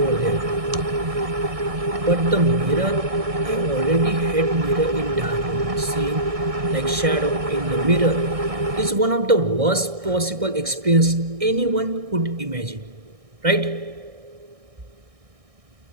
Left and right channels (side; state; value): left; late; 1.6 ms